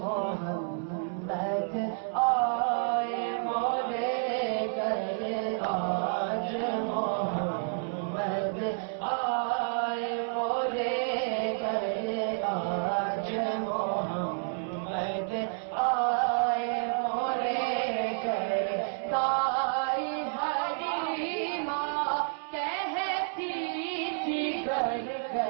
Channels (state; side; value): silent; left; 58 dB below the other